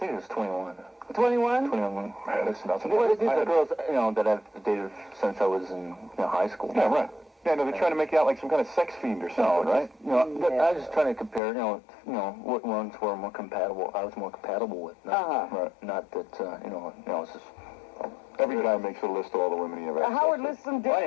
it was 21. 21? 21 women. Man, that's nothing. Well, these are girls, that I've dated since I was in high school. Yeah, right. Yeah, no, they're trying to make you out like some kind of sex fiend or something, right? I was just trying to compare, what ones were more compatible. I was more compatible with. Right. Not that, it's just... Every guy makes a list of all the women he ever had. Howard lists some I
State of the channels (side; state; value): right; drops out; at 11.4 s